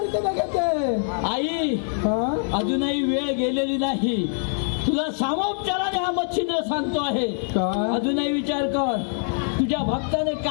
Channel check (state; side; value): silent; right; 58 dB below the other